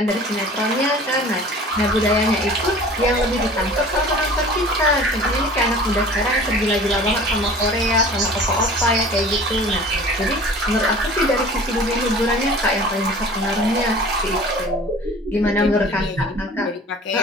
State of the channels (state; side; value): normal; both; correlation 0.43